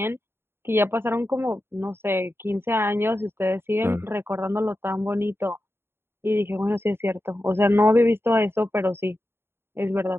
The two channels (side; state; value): left; late; 0.11 ms